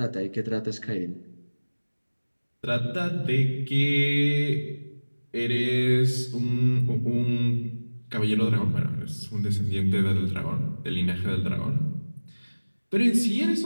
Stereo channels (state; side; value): inverted; both; correlation -1.00